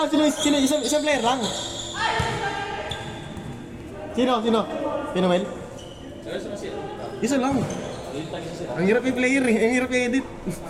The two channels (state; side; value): identical; both; correlation 1.00